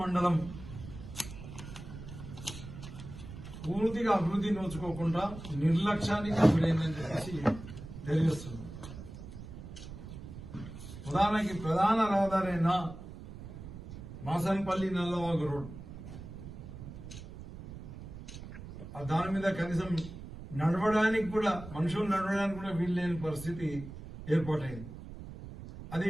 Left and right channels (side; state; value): right; noise; rumble, 12 dB below the sound